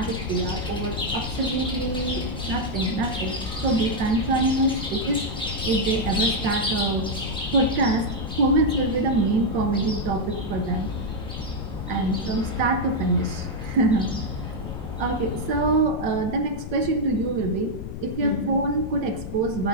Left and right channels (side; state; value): left; noise; rumble, 8 dB below the sound